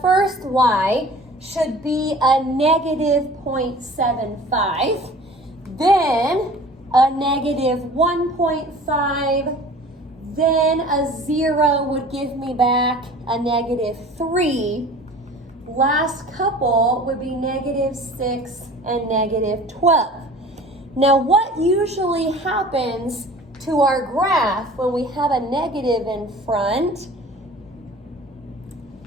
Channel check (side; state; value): both; normal; correlation 0.44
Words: first y should be a -0.75, then a -1.5, then a 0 would give me back a -3. Last couple would be -6 and -12. Now, what usually happens to our graph when we have a negative in front?